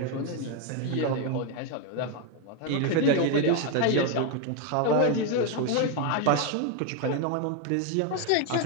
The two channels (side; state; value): both; different; correlation 0.01